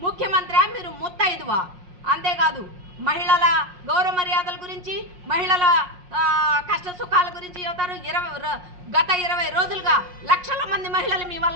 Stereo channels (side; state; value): left; late; 5.6 ms